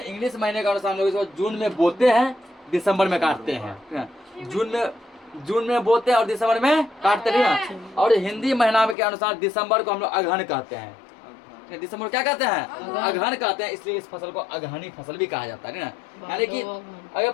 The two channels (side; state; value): right; drops out; at 9.0 s